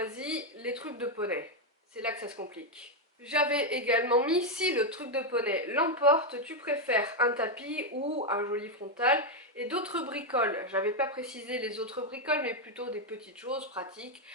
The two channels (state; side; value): normal; both; correlation 0.03